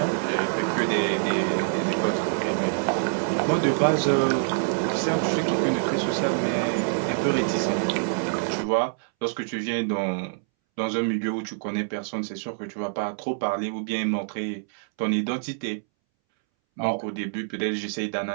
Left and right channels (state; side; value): silent; left; 61 dB below the other